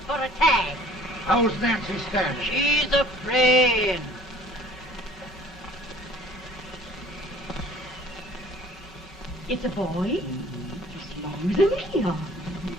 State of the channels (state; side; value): normal; both; correlation 0.52